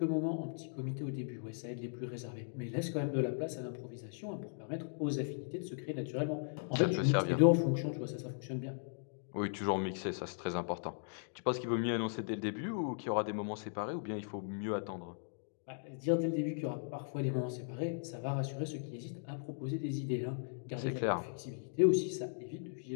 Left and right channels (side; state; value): right; silent; digital silence